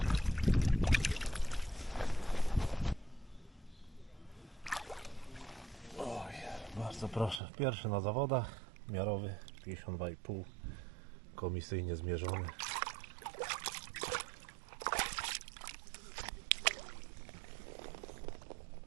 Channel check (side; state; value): left; drops out; at 7.4 s